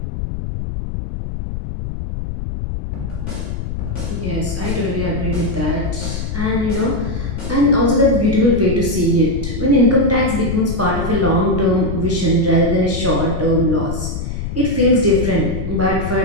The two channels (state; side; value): noise; left; rumble, 5 dB below the sound